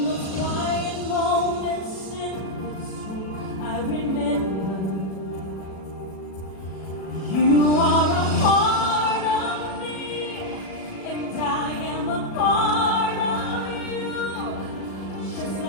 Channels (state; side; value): late; right; 37 ms